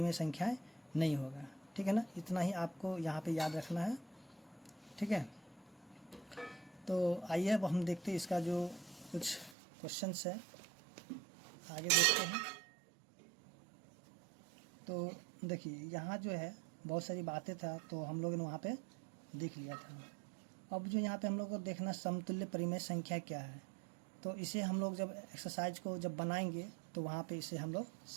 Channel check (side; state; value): left; drops out; at 9.6 s